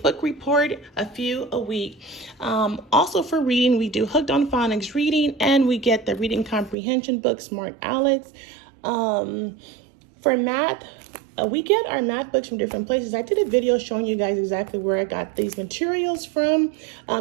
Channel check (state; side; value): drops out; left; at 6.8 s